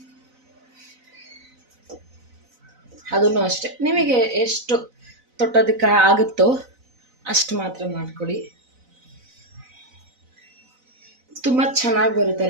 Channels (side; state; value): left; late; 4.0 ms